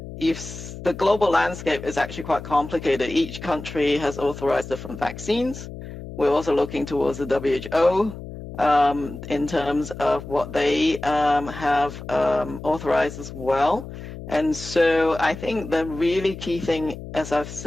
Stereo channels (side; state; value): left; noise; hum, 11 dB below the sound